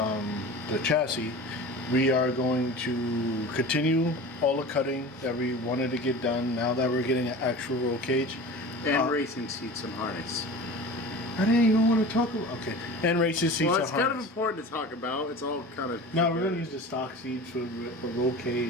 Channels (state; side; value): normal; both; correlation 0.35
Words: the chassis, we are going to continue all the cutting that we wanted to get done now that we're getting an actual roll cage. And racing seats and harness. I didn't even want to talk about. Okay, and racing seats. Well, it's kind of important to talk about. It's all kind of. No, we're gonna use the stock seats with a roll